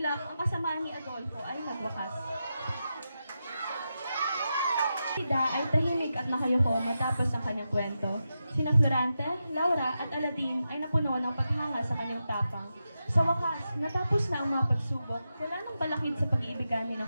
ang kasamaan ni Adolfo ay nagwakas. Florida ay tahimik at nakayuko matapos ang kanyang kwento. Sina Florante, Laura at Aladin ay napuno ng paghanga sa kanyang tapang. Sa wakas, natapos na ang mga pagsubok, wala nang balakid sa pag-iibigan ni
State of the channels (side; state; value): both; inverted; correlation -0.89